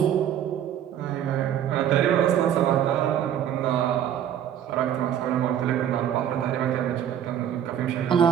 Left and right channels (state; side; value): quieter; left; 10.0 dB